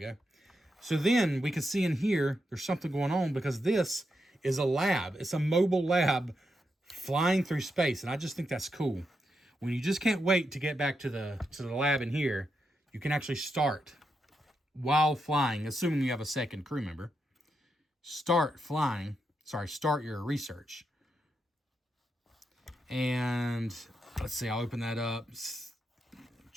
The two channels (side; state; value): both; normal; correlation 0.84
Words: So then we can see in here, there's something going on because this is a lab. It's a mobile lab flying through space. And I just think that's cool. When you just can't wait to get back to the lab in here, you can actually start while flying, assuming you have a second crew member. Start your research. And let's see, I'll open that up.